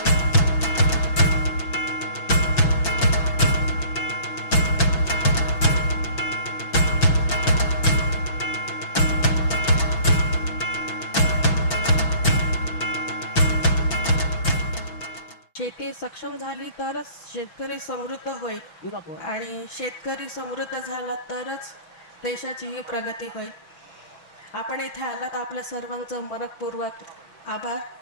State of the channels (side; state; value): right; late; 6.1 ms